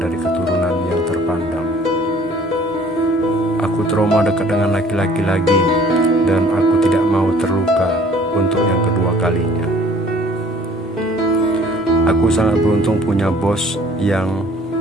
keturunan yang terpandang. Aku trauma dekat dengan laki-laki lagi, dan aku tidak mau terluka untuk yang kedua kalinya. Aku sangat beruntung punya bos yang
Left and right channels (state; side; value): normal; both; correlation 0.54